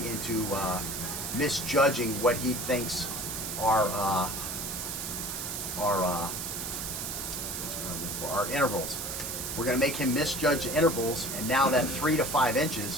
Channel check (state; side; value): noise; right; hiss, 4 dB below the sound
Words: misjudging what he thinks are intervals. We're going to make him misjudge intervals, and now that 3 to 5